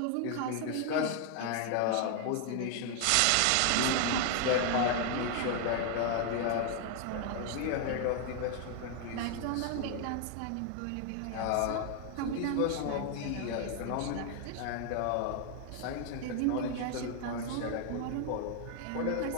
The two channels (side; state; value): both; different; correlation 0.00